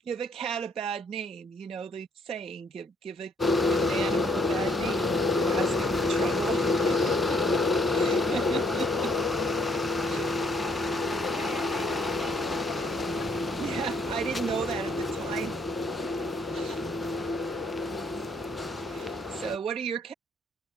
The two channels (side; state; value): both; normal; correlation 0.67